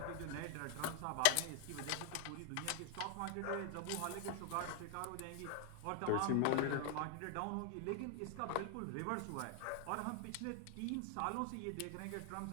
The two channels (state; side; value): different; both; correlation 0.00